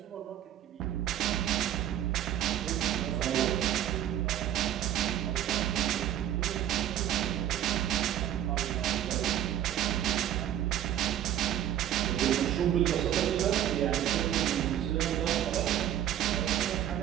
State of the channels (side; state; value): left; quieter; 11.5 dB